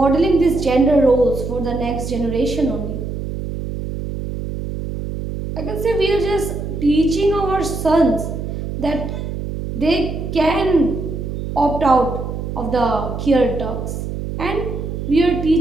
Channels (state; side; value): noise; right; hum, 5 dB below the sound